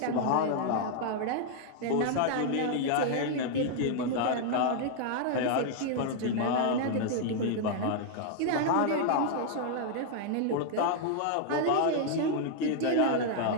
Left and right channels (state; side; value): different; both; correlation 0.00